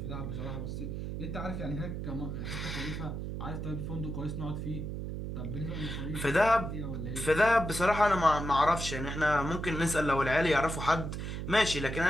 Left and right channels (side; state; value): right; noise; hum, 5 dB below the sound